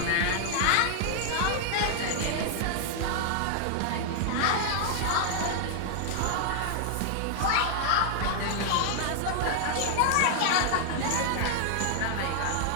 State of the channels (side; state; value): both; different; correlation 0.00